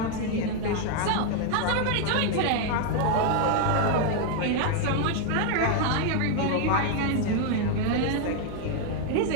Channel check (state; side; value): different; both; correlation 0.00